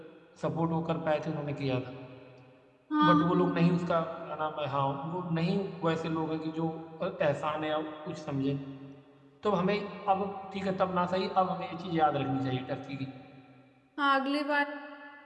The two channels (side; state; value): both; identical; correlation 1.00